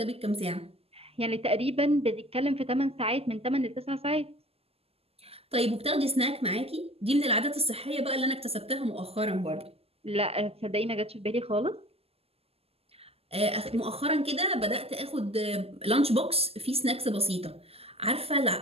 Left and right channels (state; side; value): late; left; 0.29 ms